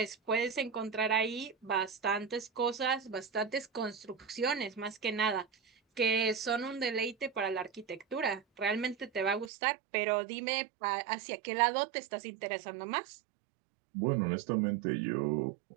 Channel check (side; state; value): left; drops out; at 9.5 s